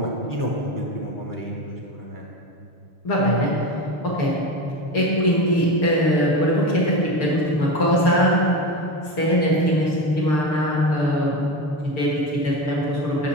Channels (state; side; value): late; right; 6.7 ms